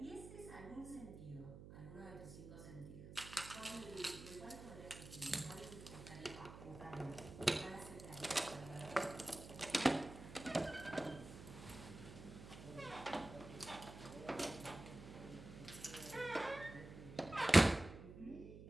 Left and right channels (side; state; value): right; noise; hum, 13 dB below the sound